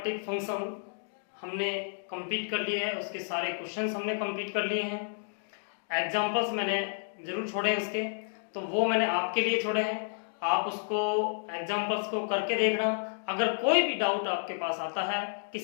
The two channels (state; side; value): silent; right; digital silence